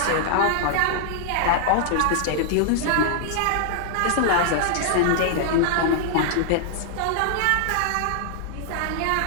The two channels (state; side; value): different; both; correlation -0.01